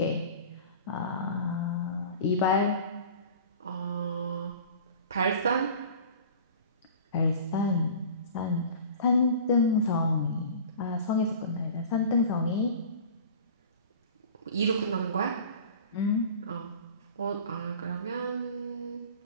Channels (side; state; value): both; inverted; correlation -0.40